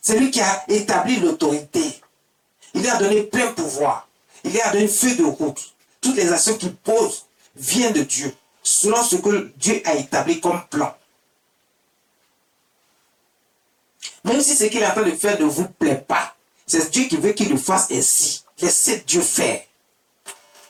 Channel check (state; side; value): identical; both; correlation 1.00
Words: lui qui a établi l'autorité. Il lui a donné plein pouvoir. Il lui a donné feu de route. Toutes les actions qu'il pose viennent de Dieu, selon ce que Dieu a établi comme plan. Même si ce qu'il est en train de faire ne vous plaît pas, c'est Dieu qui veut qu'il le fasse ainsi. Laissez Dieu faire.